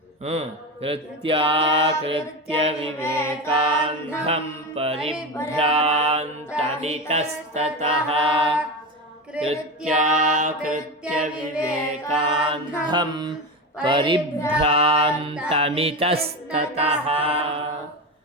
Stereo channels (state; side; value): normal; both; correlation 0.20